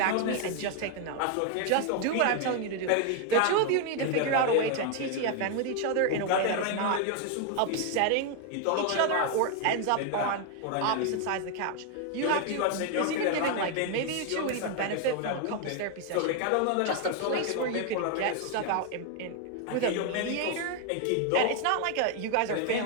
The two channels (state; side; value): different; both; correlation 0.01